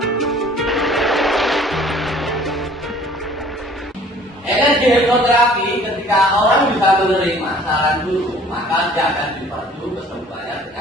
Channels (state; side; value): normal; both; correlation 0.53